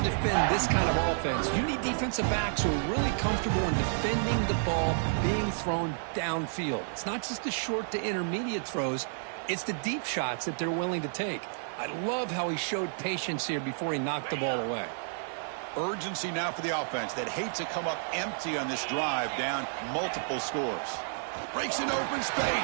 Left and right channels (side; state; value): left; silent; digital silence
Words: defend this kind of offense, you need defensive backs who are really comfortable in defending the ball being thrown downfield. It's not just the short to intermediate throws. It's the deep shots that they're willing to take. I love how he showed patience here before he knocked the ball away. Urgency now for the offense that hates to come up empty on this drive, down multiple scores. Breaks into open